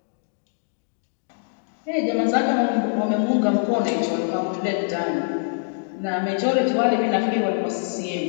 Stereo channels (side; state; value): right; silent; digital silence